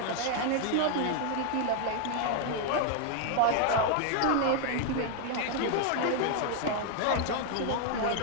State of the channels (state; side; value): different; both; correlation 0.00